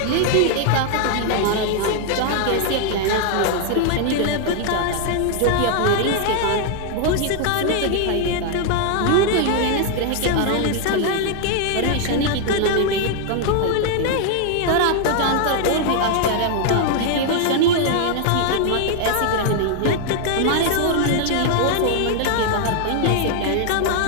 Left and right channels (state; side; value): different; both; correlation 0.00